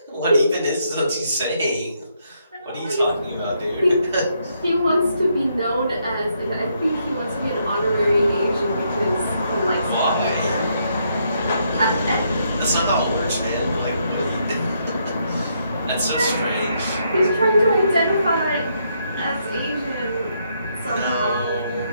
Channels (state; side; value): inverted; both; correlation -0.75